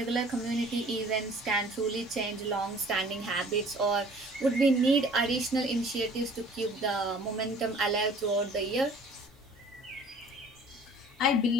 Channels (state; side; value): normal; both; correlation 0.51